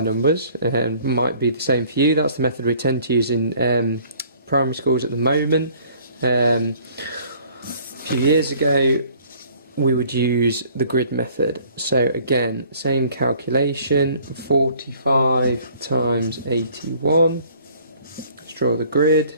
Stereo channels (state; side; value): inverted; both; correlation -0.56